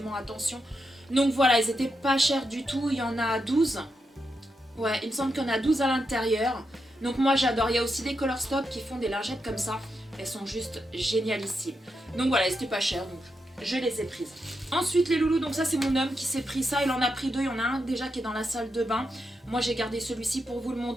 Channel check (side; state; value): both; normal; correlation 0.85